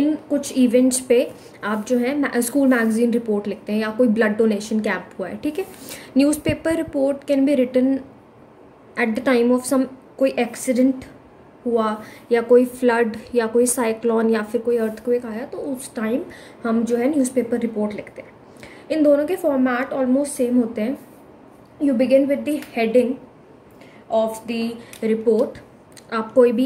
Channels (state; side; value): identical; both; correlation 1.00